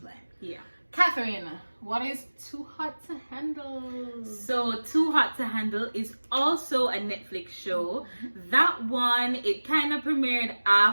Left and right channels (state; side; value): inverted; both; correlation -1.00